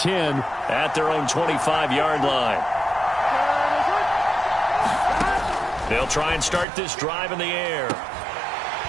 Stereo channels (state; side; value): drops out; left; at 6.7 s